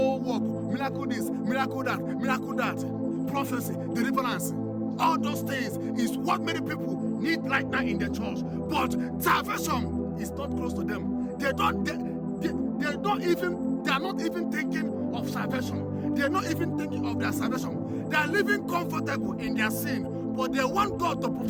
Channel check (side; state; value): both; identical; correlation 1.00